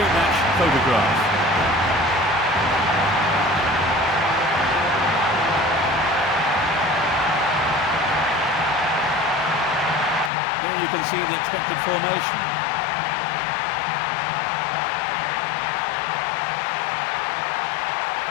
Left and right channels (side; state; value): right; drops out; at 10.3 s